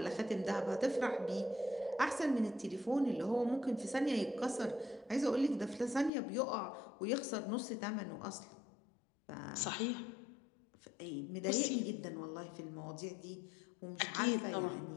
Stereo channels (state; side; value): drops out; right; at 6.1 s